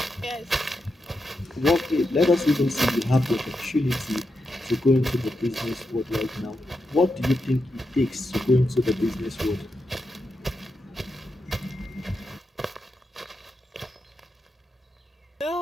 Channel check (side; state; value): both; normal; correlation 0.86